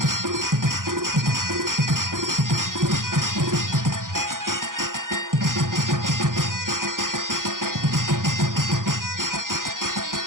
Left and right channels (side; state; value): left; late; 0.89 ms